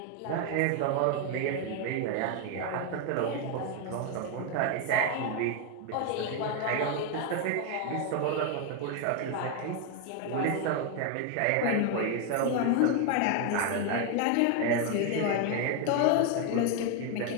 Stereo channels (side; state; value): both; different; correlation 0.01